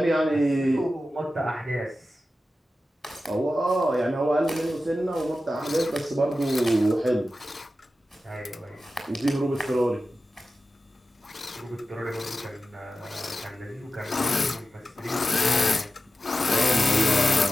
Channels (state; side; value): normal; both; correlation 0.93